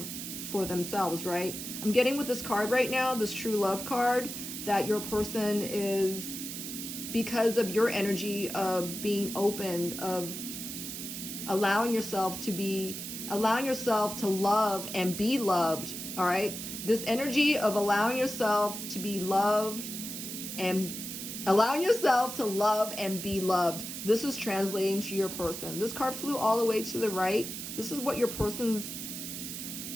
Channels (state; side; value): noise; right; hiss, 7 dB below the sound